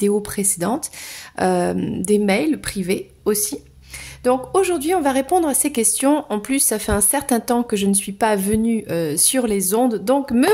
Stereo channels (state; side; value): identical; both; correlation 1.00